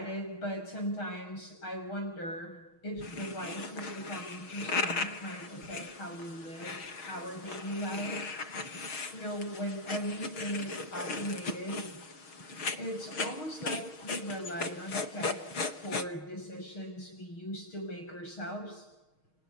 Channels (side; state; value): right; late; 6.4 ms